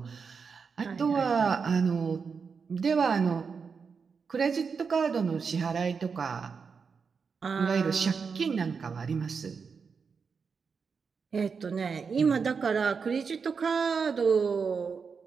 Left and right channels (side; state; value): left; quieter; 5.6 dB